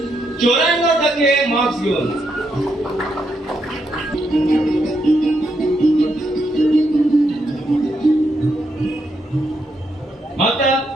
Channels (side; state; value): both; normal; correlation 0.79